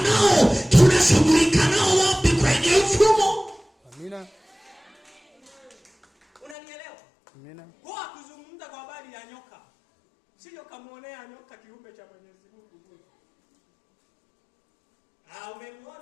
nao. Tunashughulika nao wapi? Kwenye mfumo. Amina. Unanielewa? Amina. Kwa kuzungumza kwa habari ya nyoka, sio kamuonea nyoka kiumbe cha Mwenyezi Mungu bure.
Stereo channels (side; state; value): right; drops out; at 6.6 s